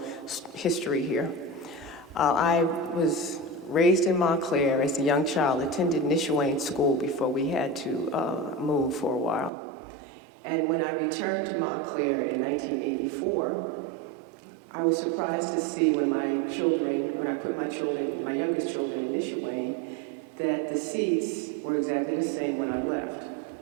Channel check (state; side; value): drops out; left; at 9.5 s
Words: history here. I was raised in Montclair as a young child, attended Nishawane School before we had to move for a while. And when I returned to Montclair in 1984, I was surprised to see when I put my youngest children in Nishawane, that the seats were exactly the same when I left.